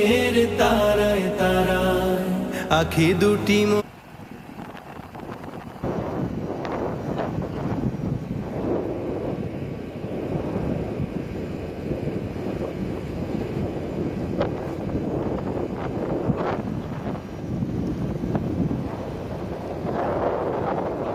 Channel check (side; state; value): both; identical; correlation 1.00